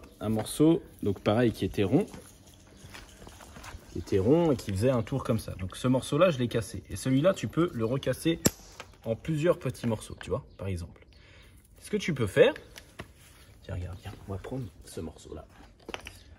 un morceau, donc pareil, qui était rond. Qui était rond et qui faisait un tour comme ça. Donc ce morceau-là, je l'ai cassé. Et celui-là, tu peux le recasser en plusieurs petits morceaux, tu vois, par exemple. Ce que tu peux faire... Tiens, regarde, viens, on va prendre ce morceau-là.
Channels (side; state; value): both; identical; correlation 1.00